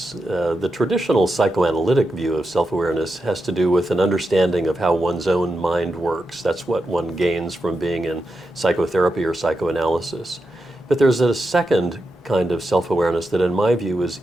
The traditional psychoanalytic view of self-awareness has to do with an understanding of how one's own mind works. That's what one gains from being in psychotherapy or psychoanalysis. But there's a second kind of self-awareness that in my view is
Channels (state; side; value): normal; both; correlation 0.88